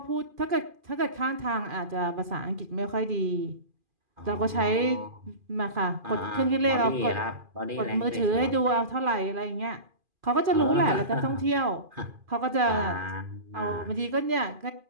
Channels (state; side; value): late; left; 2.4 ms